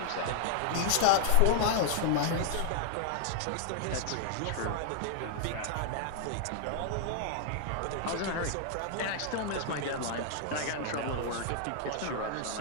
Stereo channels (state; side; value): different; both; correlation -0.01